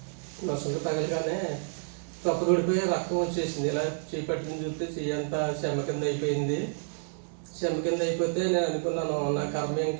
నొసలు తగలగానే తప్పుడిపోయి రక్తం వచ్చేసింది. ఇలా చేపట్టిన చూస్తే చెయ్యంతా చెమ్మ కింద అయిపోయింది. చెమ్మ కింద అయిపోతే నేను అనుకున్నాను, నా కర్మ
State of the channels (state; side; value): silent; left; digital silence